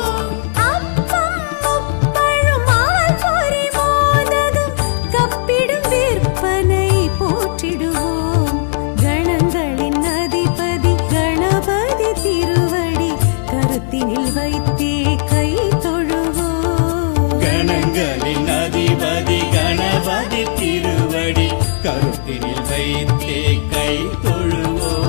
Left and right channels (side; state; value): right; silent; digital silence